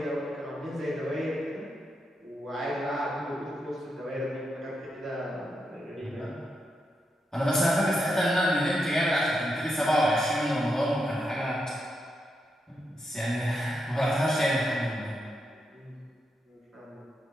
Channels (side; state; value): both; normal; correlation 0.83